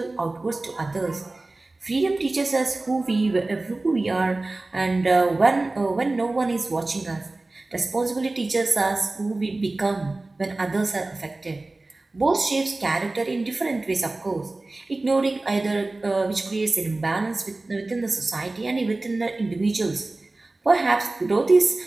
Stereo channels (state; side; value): quieter; left; 3.0 dB